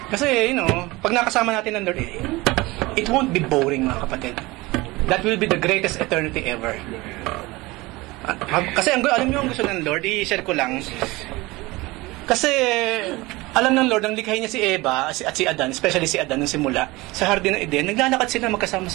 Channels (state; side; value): quieter; left; 21.6 dB